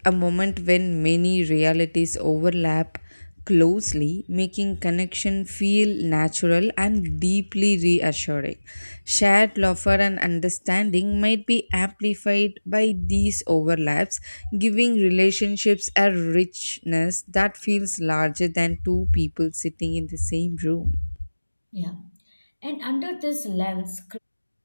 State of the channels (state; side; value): inverted; both; correlation -1.00